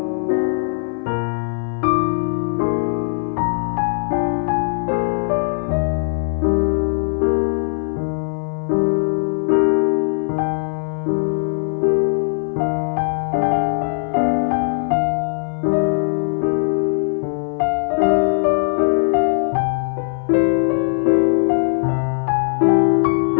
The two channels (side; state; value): right; silent; 58 dB below the other